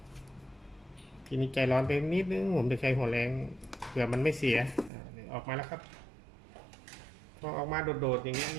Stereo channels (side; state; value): left; drops out; at 4.9 s